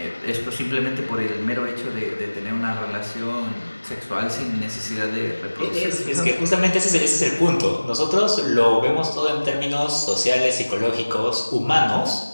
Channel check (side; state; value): both; inverted; correlation -1.00